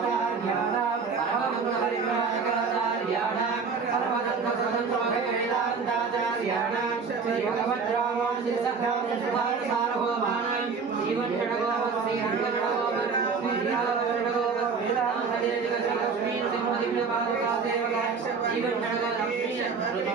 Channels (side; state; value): left; quieter; 5.2 dB